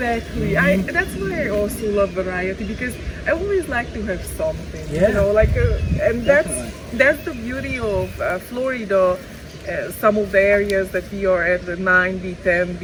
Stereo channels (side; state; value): both; identical; correlation 1.00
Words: That's why I also love variety because I always like to have something. Yeah. You know, like, and Definitely. that's the beauty of Florida. Some of the areas that we are at, the 9B,